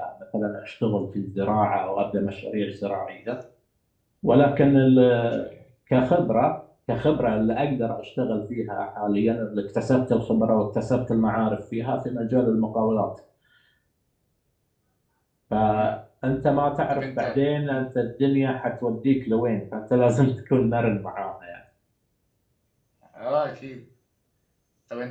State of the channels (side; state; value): both; identical; correlation 1.00